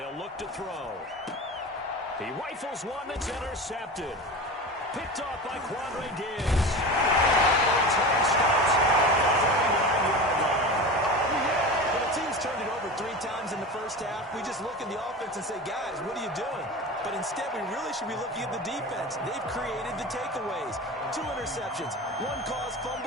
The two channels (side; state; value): both; normal; correlation 0.29